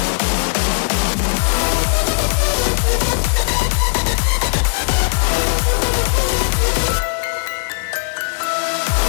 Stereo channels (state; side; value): silent; right; digital silence